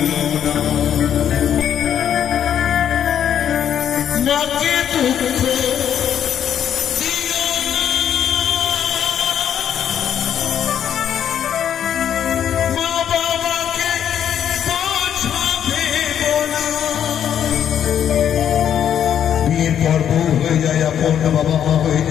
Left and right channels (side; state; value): right; quieter; 9.4 dB